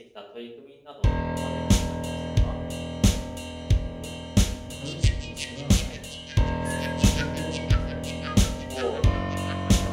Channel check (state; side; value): identical; both; correlation 1.00